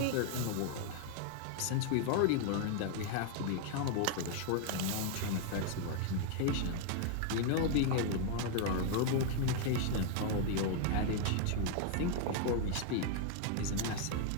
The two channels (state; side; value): different; both; correlation 0.00